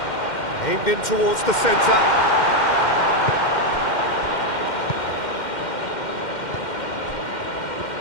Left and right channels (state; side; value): late; right; 2.1 ms